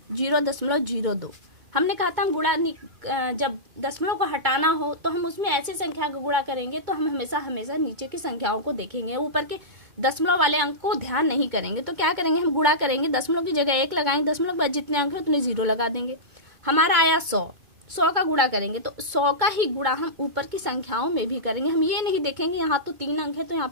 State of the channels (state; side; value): late; left; 2.2 ms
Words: 0.02। हमने कहा था हम गुणा जब दशमलव को हटाना हो तो हम उसमें ऐसी संख्या का गुणा करेंगे, तो हम हमेशा हमेशा नीचे की संख्याओं को देखेंगे, ऊपर के दशमलव वाले अंक को ध्यान नहीं करेंगे। तो क्या करेंगे, हम गुणा करेंगे, दशमलव की जगह 1 लगाएंगे, दशमलव के बाद जितने अंक है उतने 0 लगा देंगे। हमारा आया 100 का गुणा करेंगे, तो 100 का ही गुणा हम ऊपर की संख्याओं में भी करेंगे। हम ये नहीं देखेंगे यहाँ तो 3 अंक है तो यहाँ